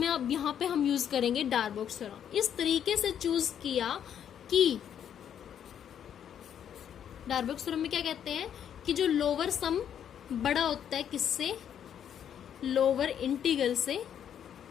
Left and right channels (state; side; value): quieter; right; 9.1 dB